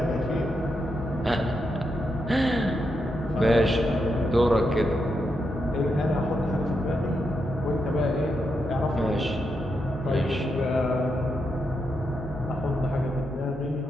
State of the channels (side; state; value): both; normal; correlation 0.83